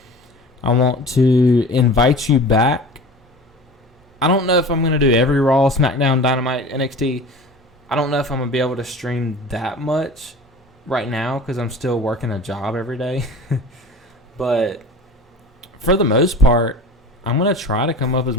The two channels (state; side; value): normal; both; correlation 0.38